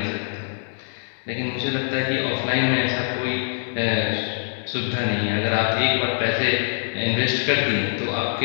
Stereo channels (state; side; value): silent; right; 63 dB below the other